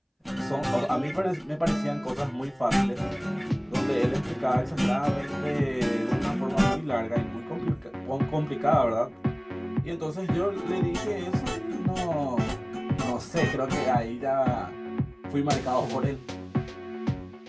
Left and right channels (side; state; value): both; identical; correlation 1.00